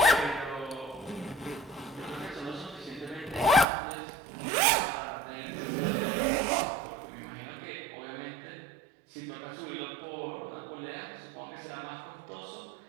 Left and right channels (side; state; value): left; drops out; at 3.7 s